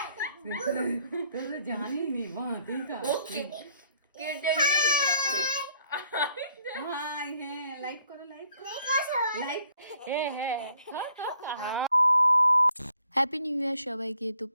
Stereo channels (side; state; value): both; inverted; correlation -0.66